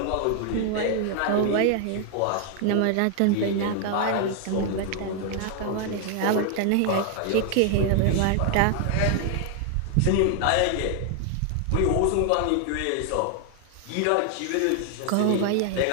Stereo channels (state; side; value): different; both; correlation 0.00